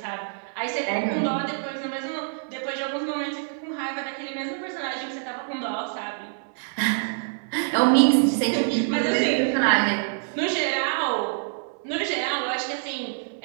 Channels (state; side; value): silent; left; 61 dB below the other